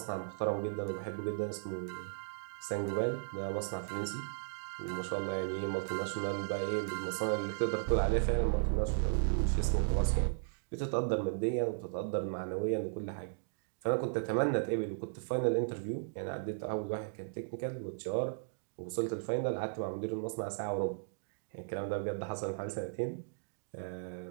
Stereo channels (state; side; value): silent; left; digital silence